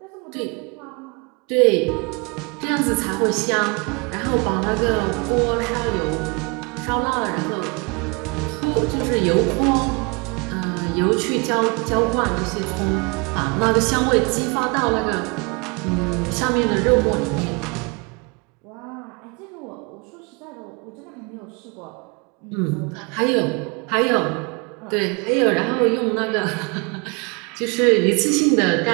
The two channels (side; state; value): left; quieter; 30.5 dB